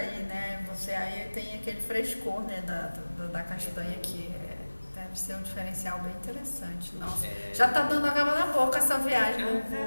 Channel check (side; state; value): both; inverted; correlation -1.00